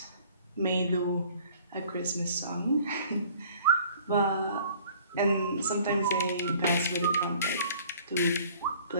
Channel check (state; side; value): inverted; both; correlation -0.53